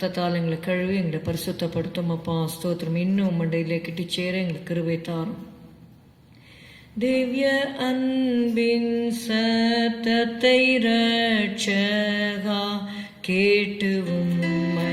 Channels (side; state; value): both; identical; correlation 1.00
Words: எங்களை கழுவி எங்களை பரிசுத்தப்படுத்தும் அப்பா. ஸ்தோத்திரம். இன்னும் மண்டையிலே கிட்டி சேர எங்களுக்கு கிருபை தாரும். திவ்ய அன்பின் சத்தத்தை ரட்சகா கேட்டு